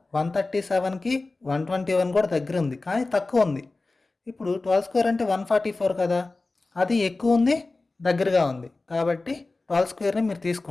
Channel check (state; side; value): quieter; right; 3.4 dB